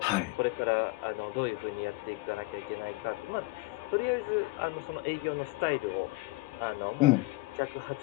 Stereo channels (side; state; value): right; quieter; 22.3 dB